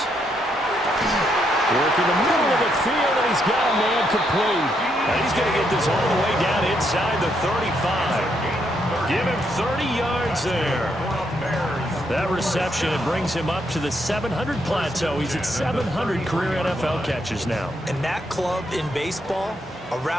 Work in the middle of the field, and he's got a man complete. And he's going to get this all the way down inside the 35. Give him 30 yards there. That reception, it brings him up to the 700 plateau. He's at 700 career NFL catches now. And that club in baseball, a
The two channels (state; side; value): normal; both; correlation 0.77